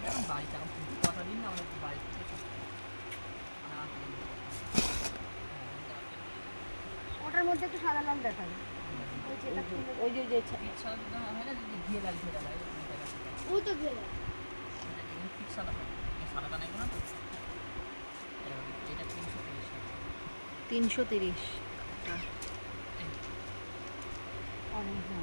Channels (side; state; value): both; inverted; correlation -1.00